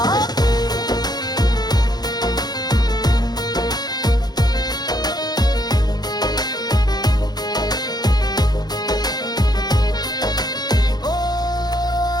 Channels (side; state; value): right; late; 0.19 ms